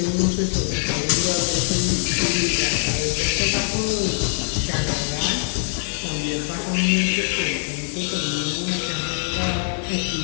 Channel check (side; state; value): right; silent; 58 dB below the other